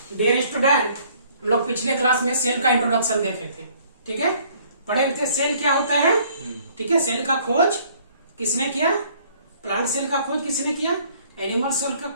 Dear student, हम लोग पिछले क्लास में सेल का इंट्रोडक्शन देखे थे। ठीक है, पढ़े थे सेल क्या होता है। ठीक है, सेल का खोज किसने किया? प्लांट सेल का खोज किसने किया? एनिमल सेल का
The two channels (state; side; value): inverted; both; correlation -0.59